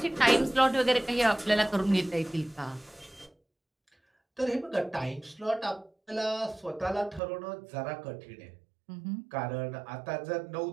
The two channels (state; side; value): drops out; left; at 7.2 s